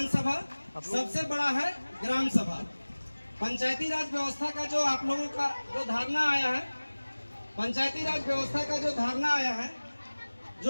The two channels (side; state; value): both; inverted; correlation -1.00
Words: सबसे बड़ा है ग्राम सभा। पंचायती राज व्यवस्था का जो आप लोगों का जो धारणा आया है, पंचायती राज व्यवस्था का जो धारणा आया है,